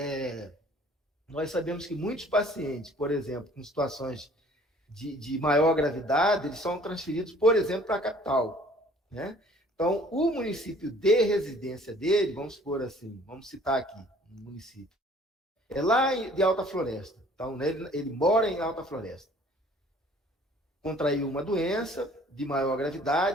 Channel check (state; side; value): normal; both; correlation 0.54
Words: nós sabemos que muitos pacientes, por exemplo, com situações de maior gravidade, eles são transferidos, por exemplo, para a capital, né? Então, o município de residência dele, vamos supor assim, vamos citar aqui um município, é lá de Alta Floresta. Então, ele mora em Alta Floresta. Contraiu uma doença de maior